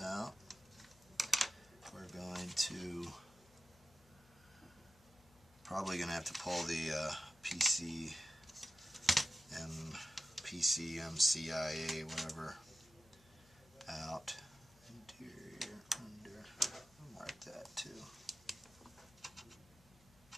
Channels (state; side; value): noise; left; hum, 27 dB below the sound